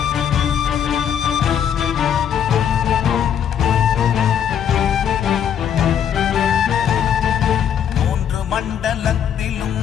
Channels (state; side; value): quieter; right; 8.8 dB